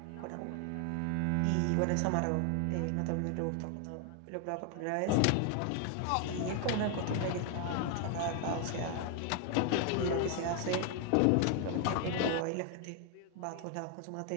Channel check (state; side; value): different; both; correlation 0.00